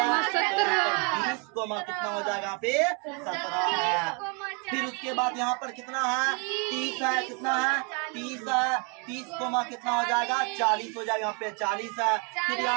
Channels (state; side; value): quieter; left; 34.7 dB